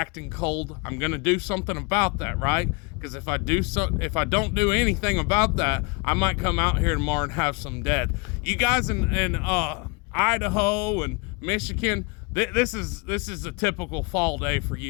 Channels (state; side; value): quieter; right; 30.4 dB